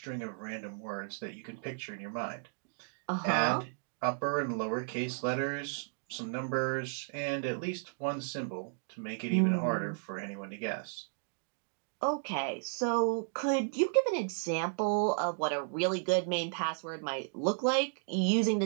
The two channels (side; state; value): left; silent; digital silence